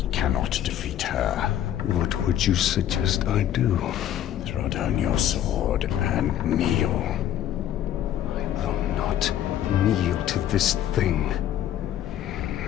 cannot defeat her. What would you suggest I do? Throw down your sword and kneel. I will not kneel to this thing.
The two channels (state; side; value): quieter; right; 11.3 dB